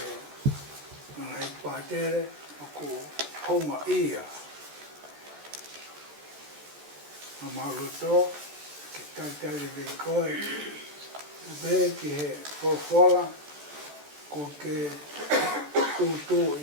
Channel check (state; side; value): late; left; 14 ms